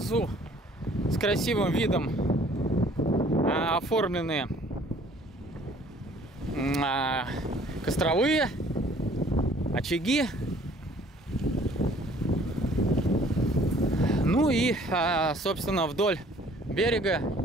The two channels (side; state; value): both; normal; correlation 0.56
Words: с красивым видом оформлены костровые очаги. Ну и, собственно, вдоль берега